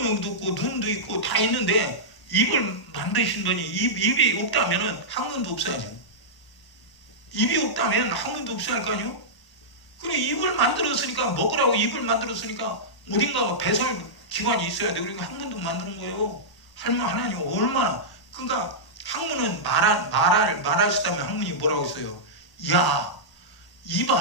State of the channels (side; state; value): right; late; 1.0 ms